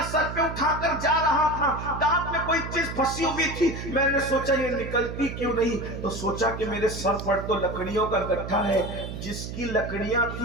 سر پہ اٹھا کر جا رہا تھا، دانت میں کوئی چیز پھنسی ہوئی تھی، میں نے سوچا یہ نکلتی کیوں نہیں، تو سوچا کہ میرے سر پر تو لکڑیوں کا گٹھا ہے، جس کی لکڑیاں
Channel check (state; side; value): noise; right; hum, 8 dB below the sound